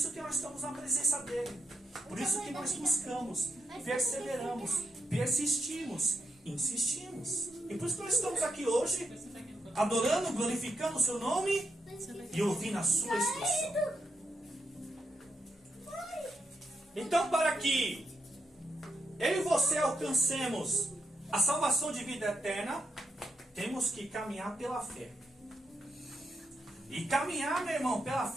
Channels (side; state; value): both; normal; correlation 0.82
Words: que nós estamos na presença dEle. Por isso que nós buscamos, perseveramos, persistimos, insistimos. E por isso que nós estamos aqui hoje, adorando, glorificando o seu nome e ouvindo a sua instrução. Então, para que eu e você alcancemos a salvação de vida eterna, temos que caminhar pela fé. E caminhar, meu irmão, pela